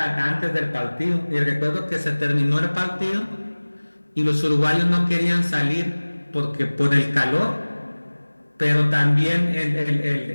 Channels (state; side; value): inverted; both; correlation -1.00